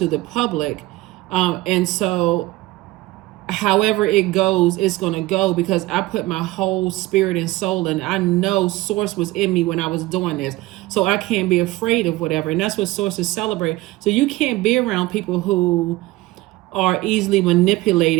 the public. And so however it goes, it's going to go, because I put my whole spirit and soul, and I know source was in me when I was doing this. So I can't be afraid of whatever. And that's what sources celebrate. So you can't be around people who are easily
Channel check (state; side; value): quieter; left; 18.7 dB